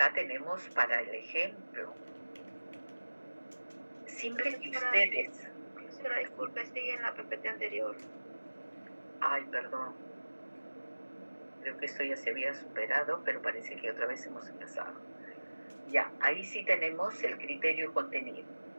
tenemos para el ejemplo, siempre que ustedes... Profesora, disculpe, sigue en la PPT anterior. Ay, perdón. Creo que esto ya se había superado, pero parece que otra vez hemos empezado. Ya, ahí sí tenemos el criterio contenido,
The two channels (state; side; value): inverted; both; correlation -1.00